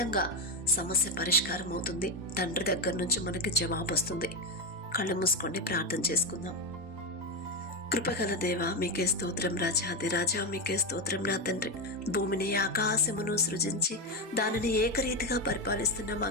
సమస్య పరిష్కారం అవుతుంది. తండ్రి దగ్గర నుంచి మనకి జవాబు వస్తుంది. కళ్ళు మూసుకోండి, ప్రార్థన చేసుకుందాం. కృపగల దేవ, మీకే స్తోత్రం. రాజాది రాజా, మీకే స్తోత్రం. నా తండ్రి, భూమిని ఆకాశమును సృజించి దానిని ఏకరీతిగా పరిపాలిస్తున్న మా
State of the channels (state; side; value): normal; both; correlation 0.11